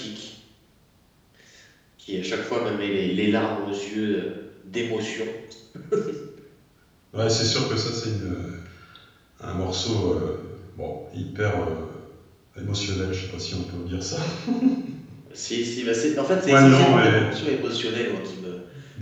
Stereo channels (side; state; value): both; identical; correlation 1.00